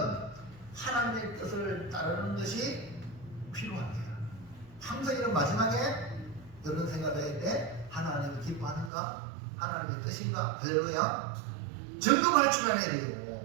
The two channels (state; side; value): drops out; left; at 8.9 s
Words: 하나님의 뜻을 따르는 것이 필요합니다. 항상 이런 마지막에 이런 생각을 할 때 하나님이 기뻐하는가? 하나님의 뜻인가? 할렐루야. 점검할 줄 아는